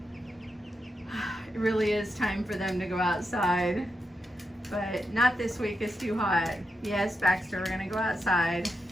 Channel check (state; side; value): normal; both; correlation 0.86